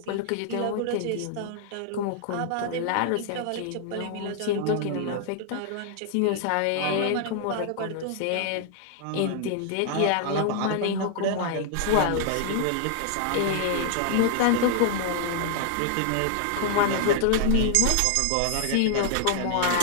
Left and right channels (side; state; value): both; different; correlation 0.00